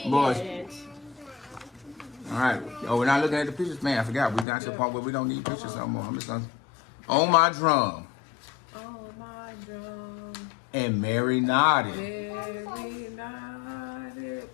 Boys. did it. All right. Oh, we're not looking at the pictures, man. I forgot. We got to the point where we don't need pictures no more. I'm just gonna on my drum. Oh my drum. And Mary nodded. Very nodded.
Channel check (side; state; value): right; drops out; at 4.5 s